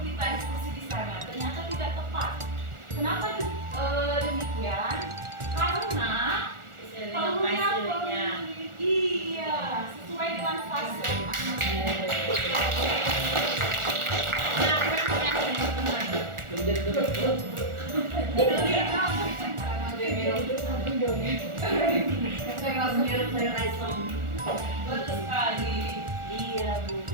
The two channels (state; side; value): late; left; 1.4 ms